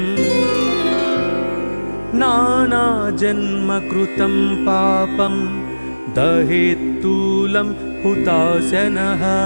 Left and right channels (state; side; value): inverted; both; correlation -1.00